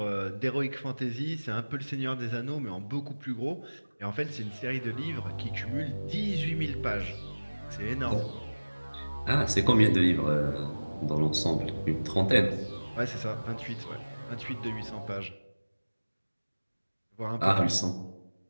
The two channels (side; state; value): both; inverted; correlation -1.00